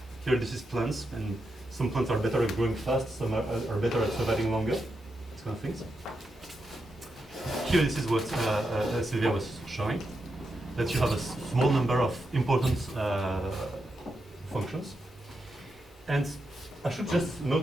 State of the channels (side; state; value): both; normal; correlation 0.86